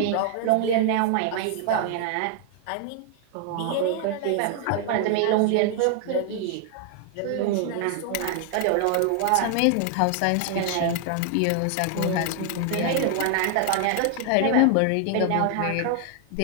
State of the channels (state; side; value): different; both; correlation 0.00